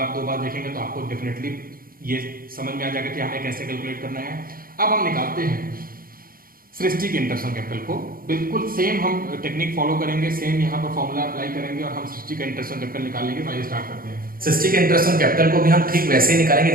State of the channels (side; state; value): left; late; 0.42 ms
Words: 2 बार देखेंगे तो आपको डेफिनेटली ये समझ में आ जाएगा कि हमें कैसे कैलकुलेट करना है। अब हम निकालते हैं सृष्टि के इंटरेस्ट ऑन कैपिटल को। बिल्कुल सेम हम टेक्निक फॉलो करेंगे, सेम यहाँ पर फॉर्मूला अप्लाई करेंगे और हम सृष्टि का इंटरेस्ट ऑन कैपिटल निकालेंगे। तो आइए स्टार्ट करते हैं। सृष्टि के इंटरेस्ट ऑन कैपिटल को भी हम ठीक वैसे ही निकालेंगे